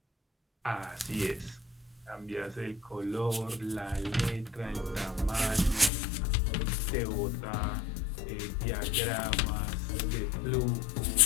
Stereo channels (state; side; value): drops out; right; at 5.9 s